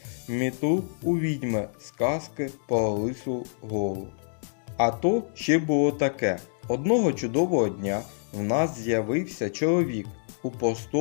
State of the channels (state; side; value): silent; right; digital silence